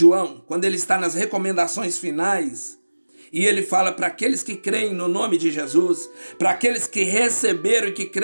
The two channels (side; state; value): both; inverted; correlation -1.00